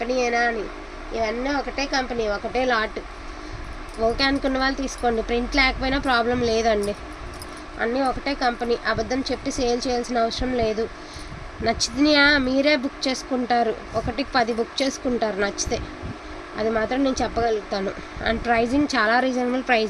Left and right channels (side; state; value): both; identical; correlation 1.00